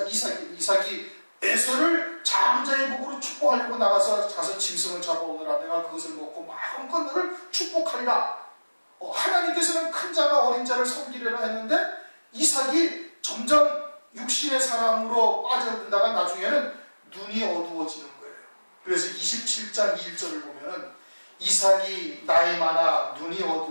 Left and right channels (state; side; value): inverted; both; correlation -1.00